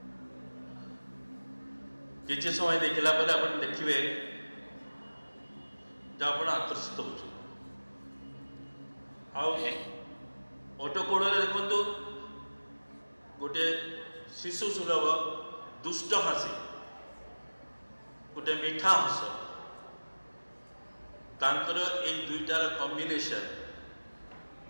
কিছু সময় দেখিলা পরে আপনি দেখবে যে আপনার আকর্ষিত হচ্ছেন। ওটো কোড়ে দেখুন গোটে শিশু সুলভ দুষ্ট হাসি, গোটে মিঠা হস। ତାଙ୍କର ଏଇ ଦୁଇଟାର କମ୍ବିନେସନ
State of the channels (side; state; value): both; inverted; correlation -1.00